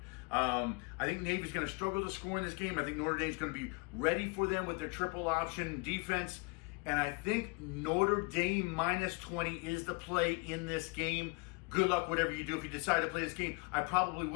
I think Navy's going to struggle to score in this game. I think Notre Dame's going to be ready for them with their triple option defense. And I think Notre Dame minus 20 is the play in this game. Good luck, whatever you do. If you decide to play this game, I probably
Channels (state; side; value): quieter; right; 30.1 dB